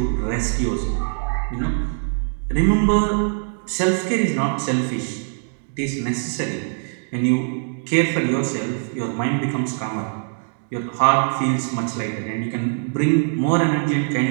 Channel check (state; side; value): silent; left; 64 dB below the other